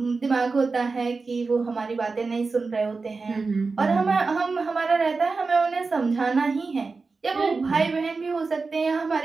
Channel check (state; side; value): quieter; left; 4.2 dB